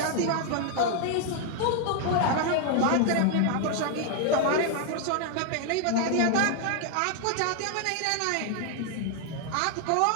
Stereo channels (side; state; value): both; different; correlation 0.00